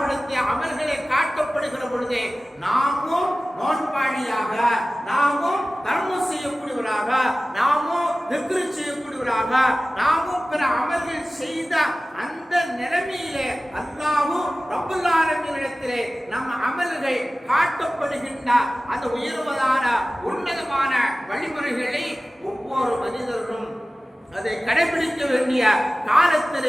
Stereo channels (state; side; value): normal; both; correlation 0.96